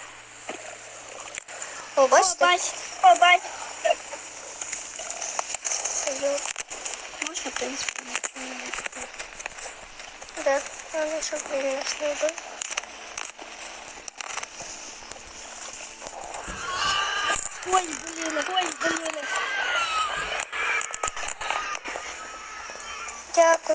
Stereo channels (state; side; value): identical; both; correlation 1.00